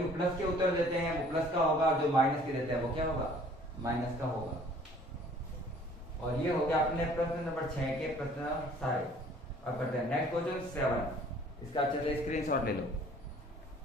प्लस के उत्तर देते हैं वो प्लस का होगा, जो माइनस के देते हैं वो क्या होगा, माइनस का होगा। और ये हो गया अपने प्रश्न नंबर 6 के प्रश्न सारे। अब करते हैं नेक्स्ट क्वेश्चन 7। इसका चलिए स्क्रीनशॉट ले लो।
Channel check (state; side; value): normal; both; correlation 0.54